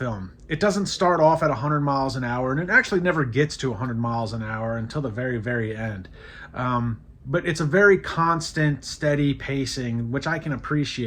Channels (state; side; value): identical; both; correlation 1.00